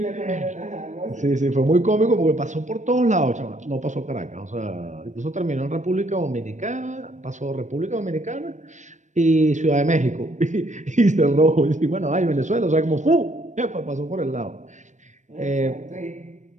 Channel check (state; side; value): late; left; 0.35 ms